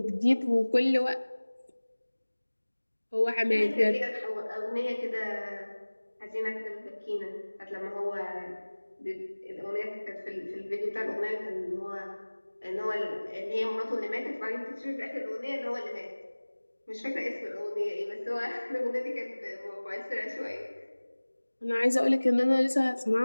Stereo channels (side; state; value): both; inverted; correlation -1.00